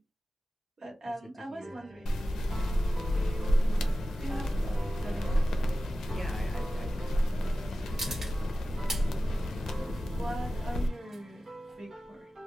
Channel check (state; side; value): normal; both; correlation 0.95